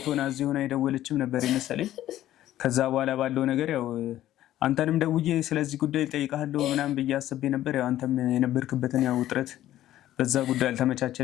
ሆና እዚህ ሆና የደወለችም ነበር የመሰለኝ። ከዛ በኋላ ባለው ነገር ያው አንተንም ደውዬ ስለዚህ ጉዳይ ጠይቃለሁ ምናምን ብዬ አስቤ ነበር። ያው አንተም የነበርክበትን ያው ውጥረት በዛ ጉዳይ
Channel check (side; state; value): right; quieter; 13.4 dB